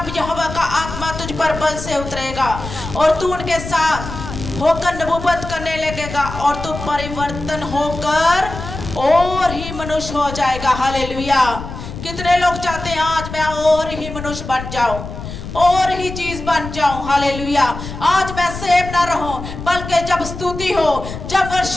यहोवा का आत्मा तुझ पर बल से उतरेगा और तू उनके साथ होकर नबूवत करने लगेगा और तू परिवर्तन होकर और ही मनुष्य हो जाएगा। हालेलुया। कितने लोग चाहते हैं आज मैं और ही मनुष्य बन जाऊं, और ही चीज बन जाऊं। हालेलुया। आज मैं सेम ना रहूं, बल्कि जब स्तुति हो, जब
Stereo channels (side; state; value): left; noise; rumble, 9 dB below the sound